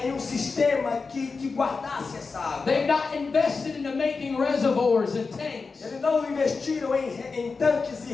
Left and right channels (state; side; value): quieter; right; 4.5 dB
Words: em um sistema que guardasse essa água. They've not invested into making reservoirs and tanks Eles não investiram em tanques e